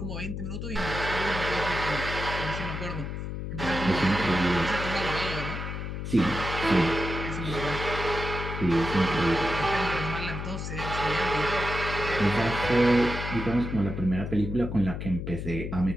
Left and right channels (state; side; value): noise; left; hum, 5 dB below the sound